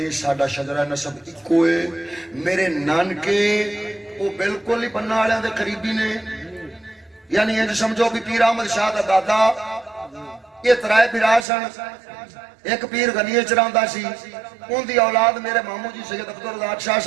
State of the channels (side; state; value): left; drops out; at 11.5 s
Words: ساڈا شجرہ نسب اکو ہے میرے نانکے وہ بالکل ہی بننا والے دے قریبی نے یعنی یہ سمجھو بھی پیر احمد شاہ دا دادا یہ 3 بھرا سن ایک پیر غنی چراندا سی ان دی اولاد میرے مامو جی سید عبدالرزاق شاہ